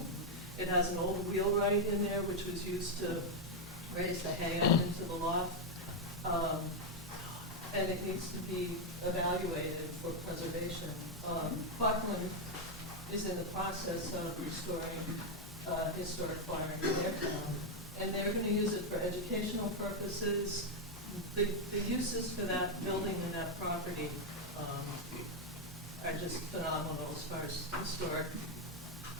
It has an old wheelwright in there, which was used to raise the hay up into the loft. And it needs to be evaluated for preservation. Buckland is in the process of restoring historic farm in their town, and they're going to use it for educational purposes. The uses for that building and that property are just phenomenal as far as historic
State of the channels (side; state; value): both; normal; correlation 0.02